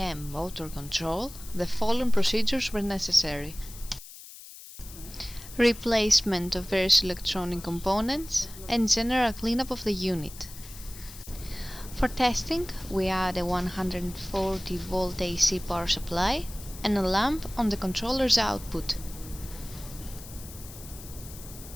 motor control, the following procedures were necessary: replacement of various electronic components and general cleanup of the unit. For testing, we add a 140 volt AC power supply and a lamp on the controller's output.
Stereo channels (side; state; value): left; noise; hiss, 16 dB below the sound